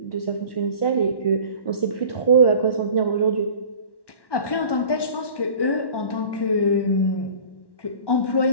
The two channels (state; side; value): late; right; 1.1 ms